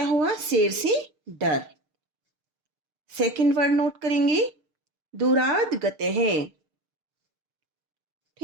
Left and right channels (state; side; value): late; left; 6.6 ms